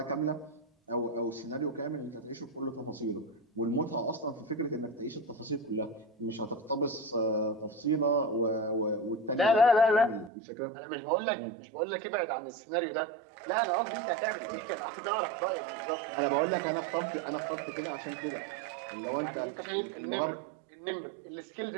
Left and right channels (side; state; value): left; drops out; at 10.3 s